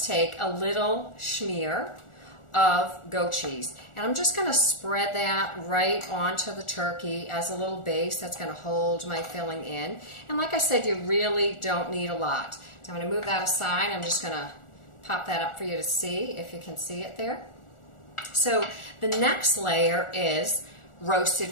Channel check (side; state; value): right; late; 1.4 ms